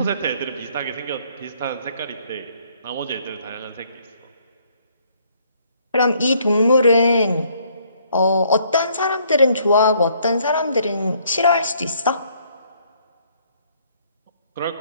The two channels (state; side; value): inverted; both; correlation -0.65